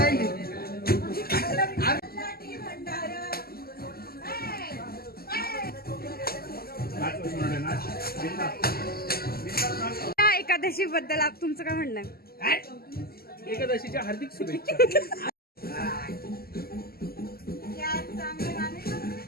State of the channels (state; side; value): late; right; 0.45 ms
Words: एकादशी बद्दल तुमचं काय म्हणणं आहे? एकादशीच्या हार्दिक शुभेच्छा.